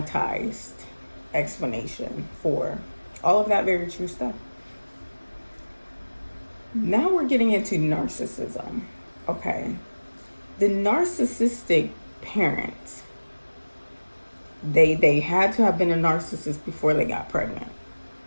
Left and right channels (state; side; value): inverted; both; correlation -1.00